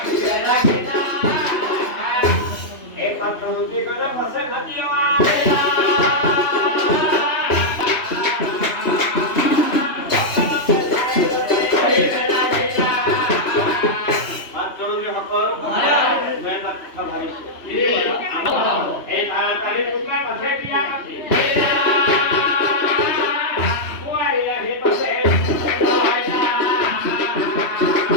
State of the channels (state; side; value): late; right; 3.0 ms